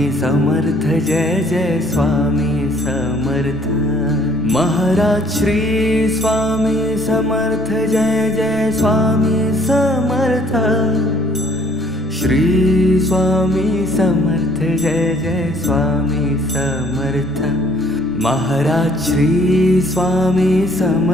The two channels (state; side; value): normal; both; correlation 0.60